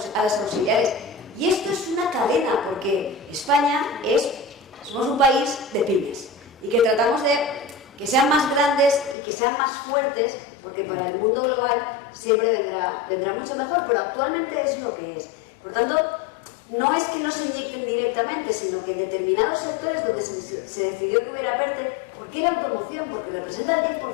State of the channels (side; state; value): right; drops out; at 9.2 s